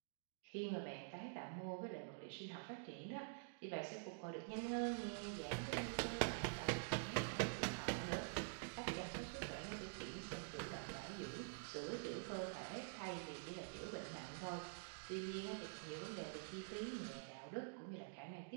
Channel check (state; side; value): silent; left; digital silence